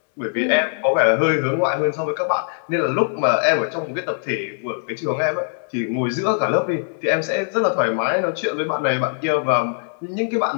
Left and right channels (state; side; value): silent; right; digital silence